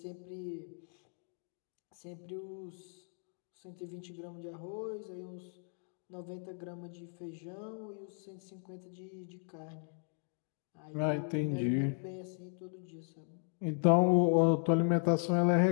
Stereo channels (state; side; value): silent; right; 53 dB below the other